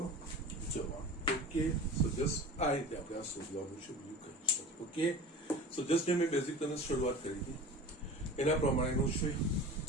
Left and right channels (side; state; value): both; normal; correlation 0.37